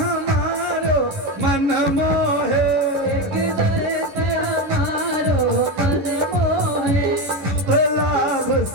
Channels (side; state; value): left; late; 11 ms